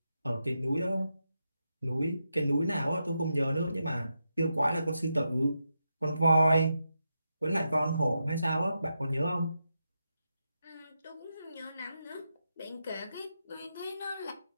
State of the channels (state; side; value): inverted; both; correlation -0.86